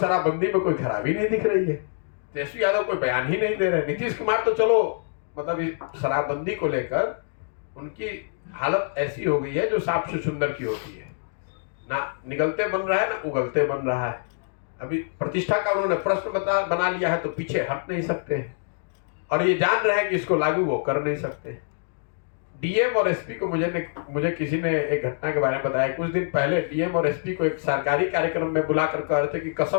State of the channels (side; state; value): right; silent; digital silence